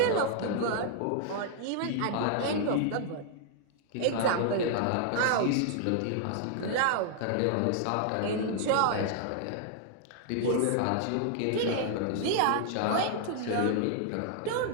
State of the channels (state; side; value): different; both; correlation 0.00